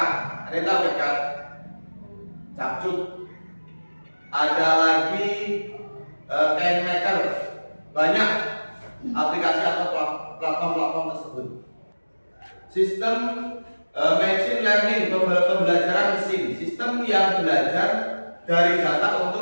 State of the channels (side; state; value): both; inverted; correlation -1.00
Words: Ada yang tahu CapCut? Capcut. Ada lagi KineMaker. Banyak aplikasi atau platform tersebut. Sistem machine learning, pembelajaran mesin, sistem yang belajar dari data